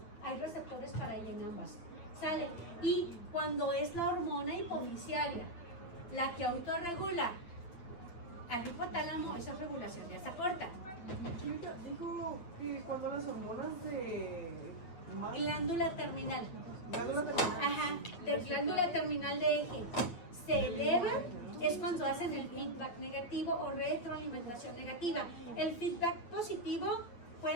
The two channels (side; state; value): right; late; 8.8 ms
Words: Hay receptores para ella en ambas. ¿Sale? Y cuando es la hormona hipofisiaria la que autorregula al hipotálamo, esa es regulación de asa corta. Dijo que cuando las hormonas de Glándula terminal. glándula terminal. Ajá, de glándula terminal de eje se elevan, es cuando hacen el feedback negativo o retroalimentación negativa. El feedback positivo